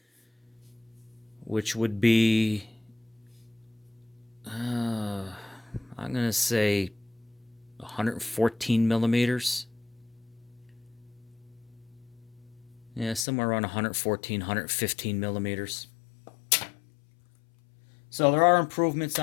which would be, I'm going to say 114 millimeters. Yeah, somewhere around 114, 115 millimeters. So there are improvements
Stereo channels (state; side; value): drops out; right; at 13.2 s